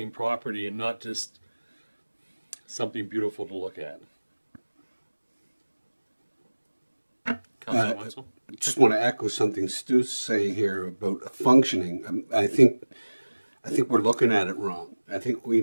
property and not just something beautiful to look at. Councillor Wenzel? I just want to echo something Stu's saying here about functioning. I think we're looking at it wrong. I think we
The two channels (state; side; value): inverted; both; correlation -1.00